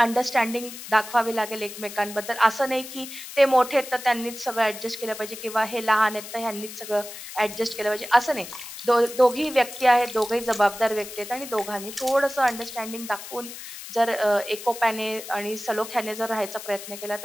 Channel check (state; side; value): noise; left; hiss, 12 dB below the sound